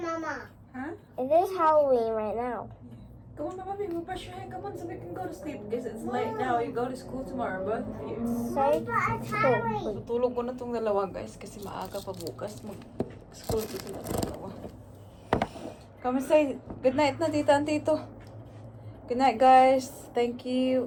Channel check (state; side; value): identical; both; correlation 1.00